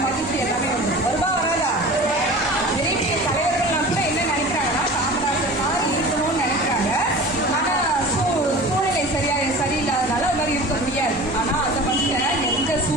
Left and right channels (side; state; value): both; normal; correlation 0.38